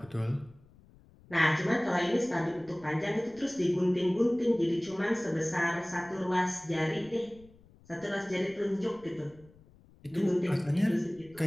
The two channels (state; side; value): noise; left; rumble, 26 dB below the sound